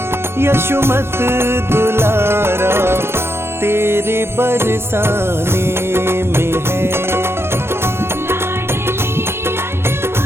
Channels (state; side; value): late; left; 0.12 ms